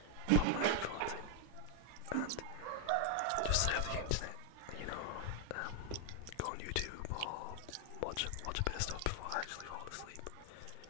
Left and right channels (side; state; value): both; different; correlation 0.00